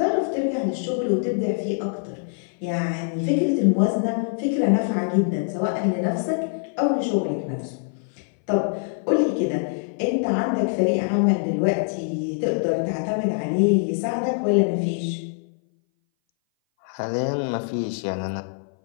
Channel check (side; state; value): right; silent; 59 dB below the other